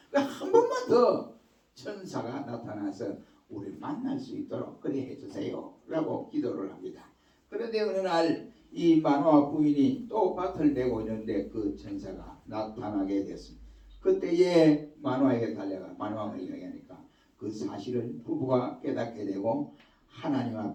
한 번만 더 천사가 나타나서 우리를 만날 수 있도록 그래 해주세요 라고 기도를 합니다. 그런데 어느 날 이 마노아 부인이 또 밭을 메고 있는데 그 천사가 나타나게 됐습니다. 그때에 마노아에게 달려가 마노아가 이야기하니까 그 사실을 부부가 깨닫게 되고 하나님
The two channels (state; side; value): identical; both; correlation 1.00